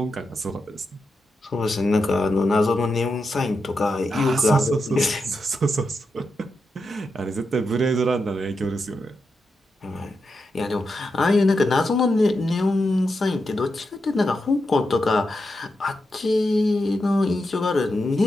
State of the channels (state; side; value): normal; both; correlation 0.87